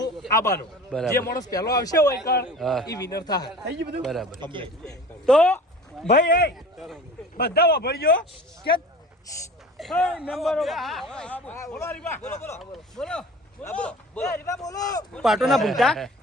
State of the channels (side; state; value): both; normal; correlation 0.41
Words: આવવાનું. જે માણસ પહેલો આવશે હોય એ વિનર થાય. થઈ ગયું બધું બરાબર? તો ભાઈ બધા વાપરજો કે પાટો ના ભૂલતા